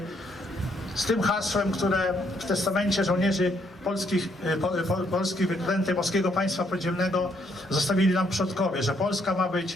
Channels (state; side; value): normal; both; correlation 0.71